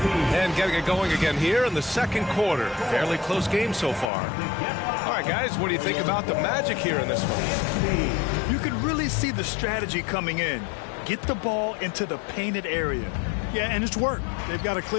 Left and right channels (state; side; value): drops out; right; at 4.1 s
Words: And getting it going again here in the second quarter. Fairly close game so far. All right, guys, what do you think about the Magic here in this one? You can really see the strategy coming in. Get the ball into the painted area. Yeah, and it's worked. They've got a